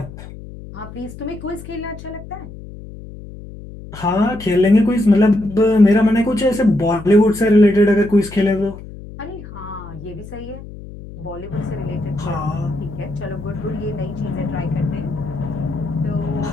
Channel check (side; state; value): left; noise; hum, 14 dB below the sound